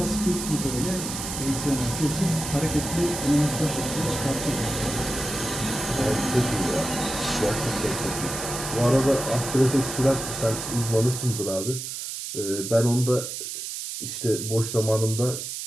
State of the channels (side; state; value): right; noise; hiss, 6 dB below the sound